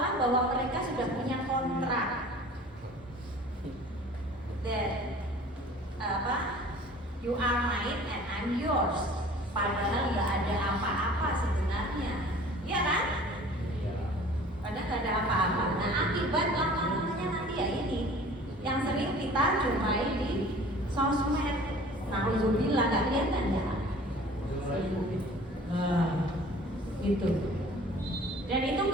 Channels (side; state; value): both; normal; correlation 0.47